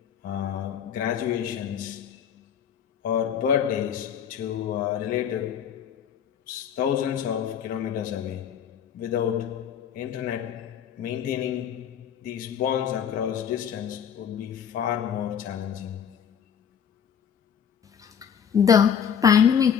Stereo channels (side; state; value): right; quieter; 8.2 dB